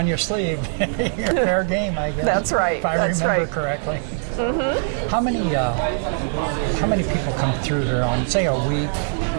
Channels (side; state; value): left; silent; digital silence